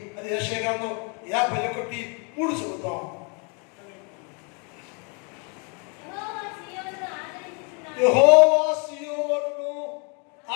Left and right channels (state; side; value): quieter; right; 35.5 dB